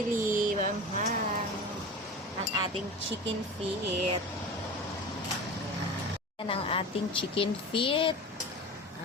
manghang. Ang ating chicken feet. Ayan ang ating chicken feet.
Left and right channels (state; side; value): normal; both; correlation 0.32